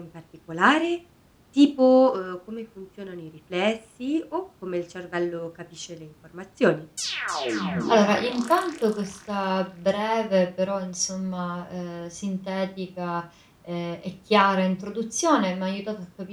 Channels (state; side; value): identical; both; correlation 1.00